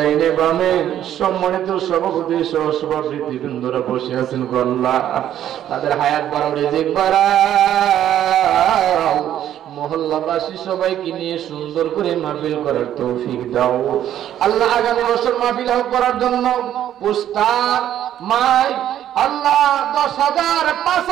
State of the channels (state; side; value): quieter; left; 11.2 dB